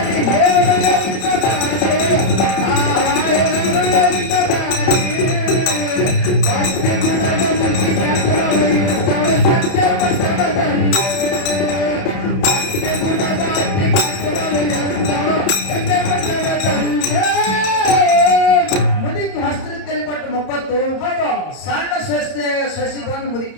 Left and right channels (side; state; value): right; late; 31 ms